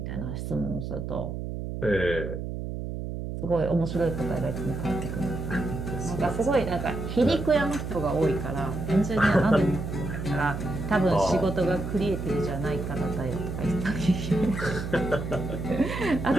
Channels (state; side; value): noise; right; hum, 5 dB below the sound